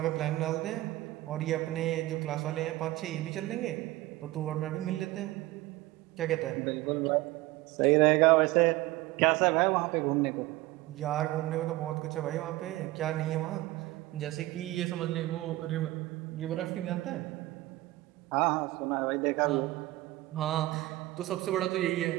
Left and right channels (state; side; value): quieter; left; 18.1 dB